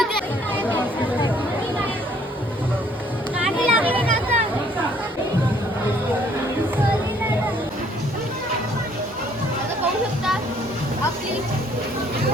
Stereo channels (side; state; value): both; normal; correlation 0.62